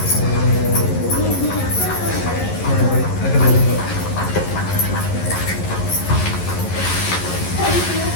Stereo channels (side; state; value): right; late; 11 ms